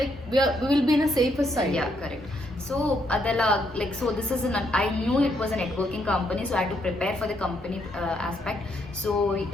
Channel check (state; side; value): normal; both; correlation 0.74